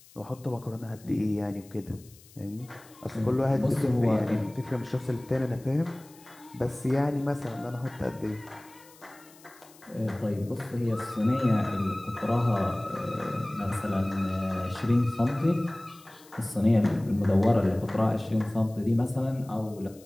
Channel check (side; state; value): left; noise; hiss, 25 dB below the sound